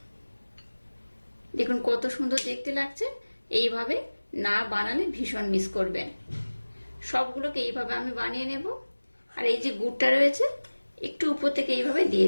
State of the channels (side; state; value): both; inverted; correlation -1.00